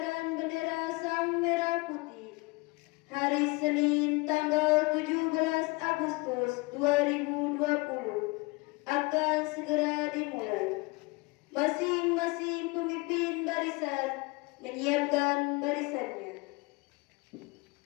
bendera Sang Merah Putih hari Senin tanggal 17 Agustus 2020 akan segera dimulai. Masing-masing pemimpin barisan menyiapkan barisannya.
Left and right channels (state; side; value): quieter; right; 25.8 dB